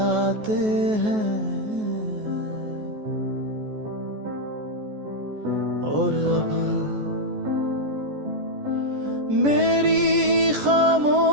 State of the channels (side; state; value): left; late; 14 ms